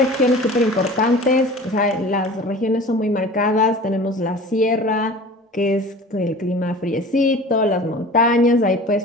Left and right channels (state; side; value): normal; both; correlation 0.40